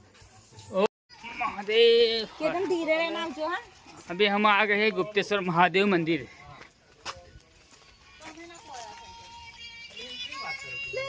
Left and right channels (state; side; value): identical; both; correlation 1.00